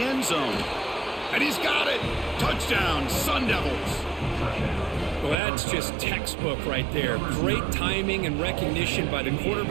end zone. And he's got it. Touchdown, Sun Devils. Well, that's just textbook right there. Great timing and recognition by the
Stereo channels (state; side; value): drops out; left; at 5.4 s